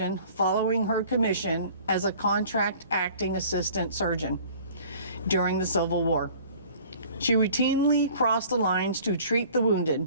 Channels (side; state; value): both; inverted; correlation -0.50